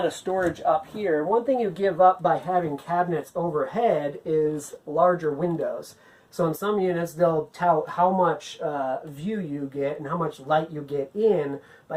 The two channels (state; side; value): identical; both; correlation 1.00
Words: of storage up here. One thing you give up by having cabinets overhead is larger windows. So in some units they'll tout how much view you get and how much light you get in